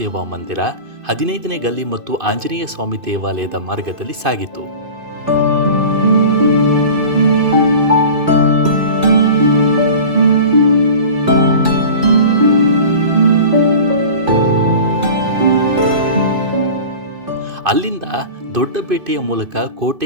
ಮಂದಿರ, 15ನೇ ಗಲ್ಲಿ ಮತ್ತು ಆಂಜನೇಯ ಸ್ವಾಮಿ ದೇವಾಲಯದ ಮಾರ್ಗದಲ್ಲಿ ಸಾಗಿತು. ಅಲ್ಲಿಂದ ದೊಡ್ಡಪೇಟೆಯ ಮೂಲಕ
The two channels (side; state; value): left; late; 2.5 ms